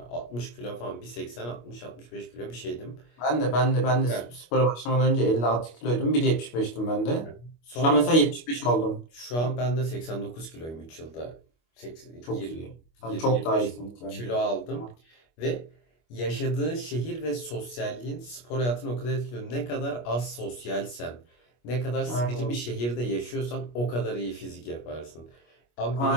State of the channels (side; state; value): right; late; 25 ms